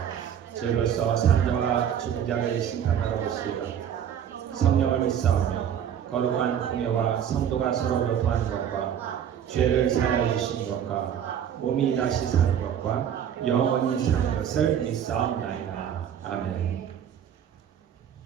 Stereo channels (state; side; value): quieter; left; 9.1 dB